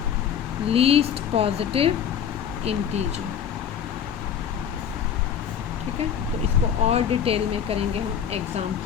least positive integer. ठीक है, तो इसको और डिटेल में करेंगे हम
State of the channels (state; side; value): quieter; right; 8.4 dB